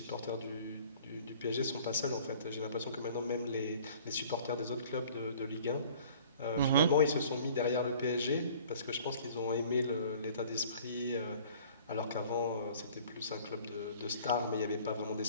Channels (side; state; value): both; inverted; correlation -0.50